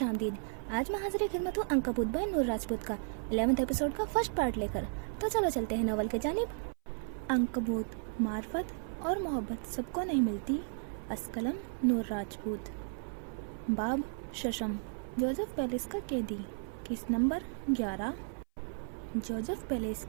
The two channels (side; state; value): left; silent; 55 dB below the other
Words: आमदीद। आज मैं हाजिर खिदमत हूँ अंकबूत बाय नूर राजपूत का 11th एपिसोड का फर्स्ट पार्ट लेकर। तो चलो चलते हैं नॉवल के जानिब। अंकबूत, मार्फत और मोहब्बत सबको नहीं मिलती। अस्कलम नूर राजपूत। बाब शशम, जोसेफ पैलेस का कैदी। Case number 11। जोसेफ पैलेस